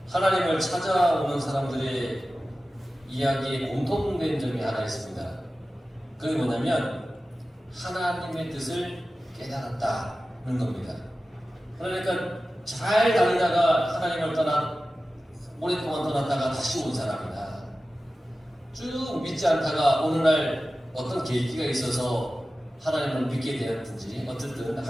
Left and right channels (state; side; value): normal; both; correlation 0.95